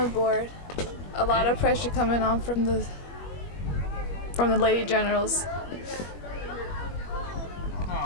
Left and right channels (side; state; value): right; late; 21 ms